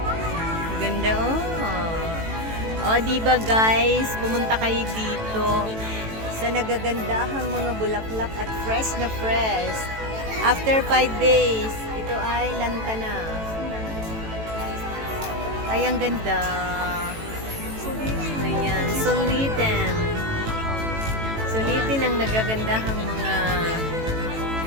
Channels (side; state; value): left; late; 18 ms